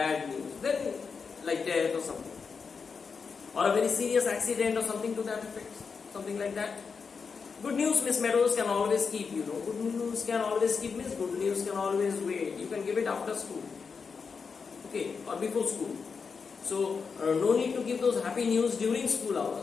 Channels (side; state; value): right; quieter; 5.4 dB